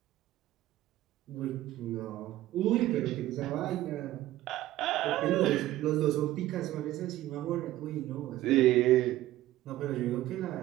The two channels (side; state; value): left; quieter; 15.1 dB